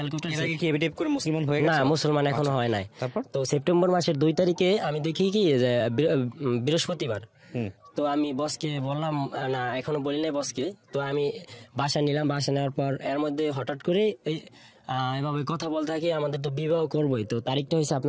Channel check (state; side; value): identical; both; correlation 1.00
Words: করে মুসলমান হয়ে না মুসলমান এখনো হয় নাই। তো সেপ্টেম্বর মাসের 2 তারিখে আমি দেখি কি যে বৃহস্পতিবার। তো আমি বসকে বললাম, না এখনো বলি নাই বসকে। তো আমি বাসা নিলাম, বাসা নেওয়ার পর এর মধ্যে হঠাৎ করে এভাবে কথা বলতে থাকি আমাদের তো বিবাহ করবোই। তো তারিখটা হয়েছে